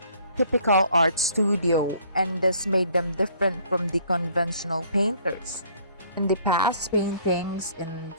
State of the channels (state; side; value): inverted; both; correlation -0.59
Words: typical art studio, and this made them different from the conventional painters. In the past, paintings in